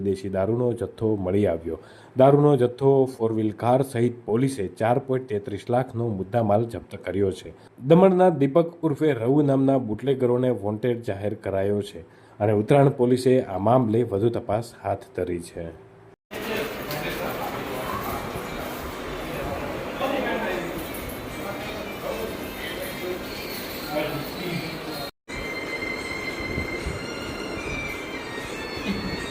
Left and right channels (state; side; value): identical; both; correlation 1.00